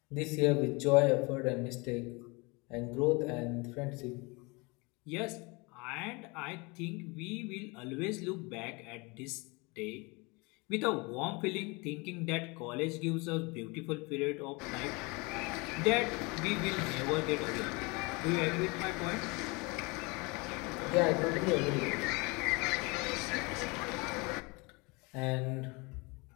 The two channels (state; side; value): quieter; right; 27.5 dB